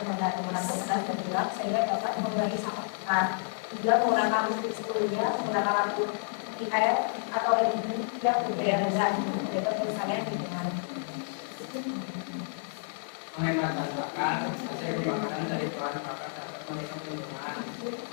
kertas bergerak sehingga dapat mengurangi sampah. 3. Menggunakan listrik sebelumnya, menggunakan lampu IR atau LED yang berbeda zat, yaitu misalnya lingkungan. menghemat bahan hasil pembakaran dari bahan bakar dapat merusak lingkungan,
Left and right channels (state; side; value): silent; right; 58 dB below the other